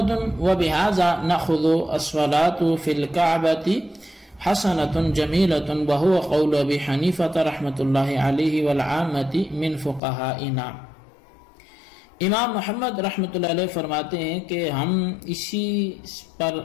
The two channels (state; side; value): drops out; right; at 10.0 s